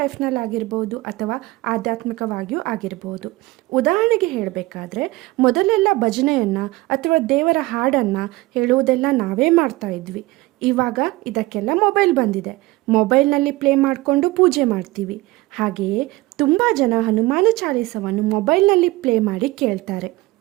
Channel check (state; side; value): quieter; left; 20.1 dB